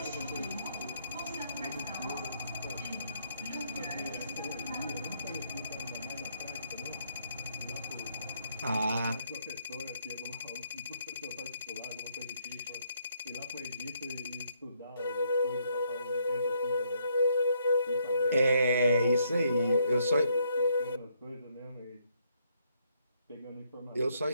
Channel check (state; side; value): inverted; both; correlation -0.72